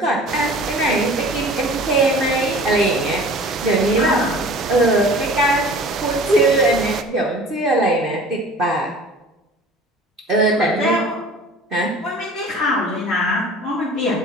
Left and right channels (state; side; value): normal; both; correlation 0.44